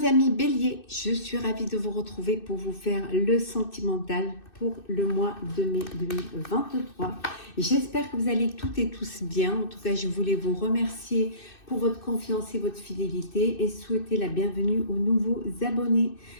amis Bélier, je suis ravie de vous retrouver pour vous faire le sentimental pour le mois de mai 2023. J'espère que vous allez toutes et tous bien. En tout cas, je voulais vous remercier pour votre confiance et votre fidélité et souhaiter la bienvenue aux nouveaux abonnés.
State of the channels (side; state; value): right; late; 2.6 ms